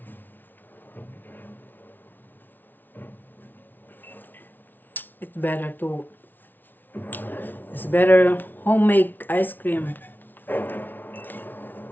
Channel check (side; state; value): right; late; 0.088 ms